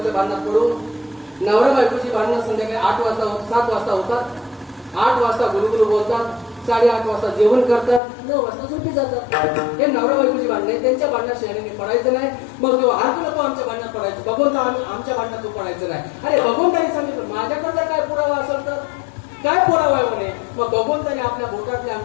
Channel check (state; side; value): drops out; right; at 8.0 s